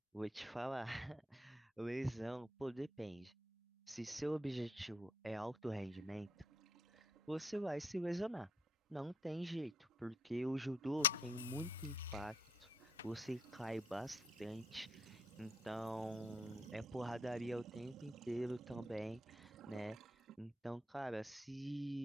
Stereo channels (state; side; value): normal; both; correlation 0.72